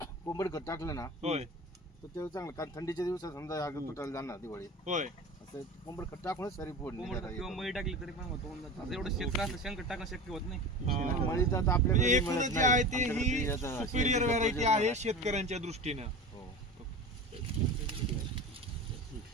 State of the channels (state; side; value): normal; both; correlation 0.31